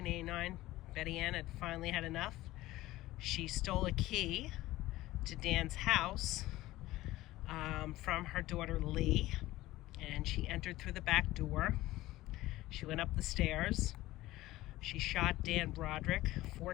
Betty Ann had finally had enough. She stole a key to Dan's house from her daughter Lee, and she entered through the back door. She went up the stairs. She shot Dan Broderick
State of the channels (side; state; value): right; quieter; 17.0 dB